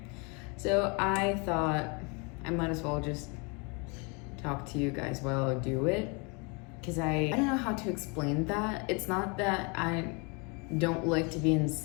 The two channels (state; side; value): quieter; right; 31.8 dB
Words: So I thought I might as well just talk to you guys while I do it. Because I don't know how to explain that. It's not that I don't like to be in